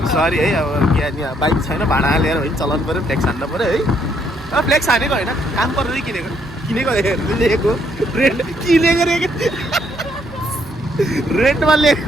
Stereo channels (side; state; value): both; normal; correlation 0.71